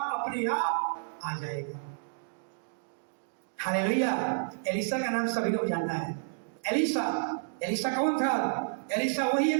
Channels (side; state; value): left; silent; digital silence